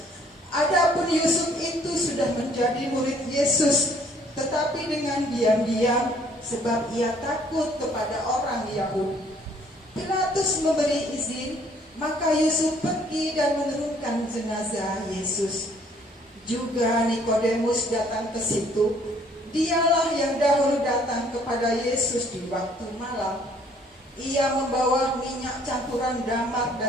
Adapun Yusuf itu sudah menjadi murid Yesus, tetapi dengan diam-diam, sebab ia takut kepada orang Yahudi. Pilatus memberi izin, maka Yusuf pergi dan menurunkan jenazah Yesus. Juga Nikodemus datang ke situ. Dialah yang dahulu datang kepada Yesus di waktu malam. Ia membawa minyak campuran damar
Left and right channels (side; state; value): both; normal; correlation 0.61